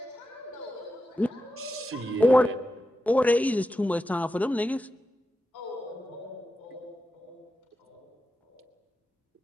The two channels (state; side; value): normal; both; correlation 0.90